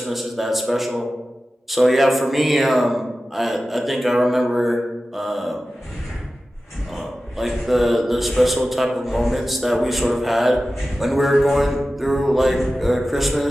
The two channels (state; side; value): normal; both; correlation 0.95